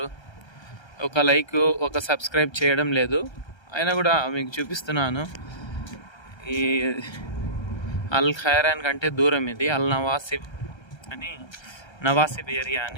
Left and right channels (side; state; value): right; late; 1.3 ms